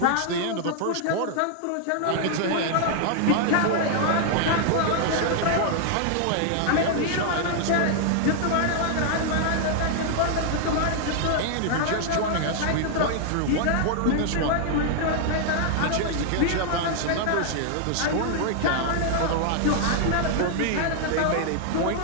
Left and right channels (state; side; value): different; both; correlation 0.00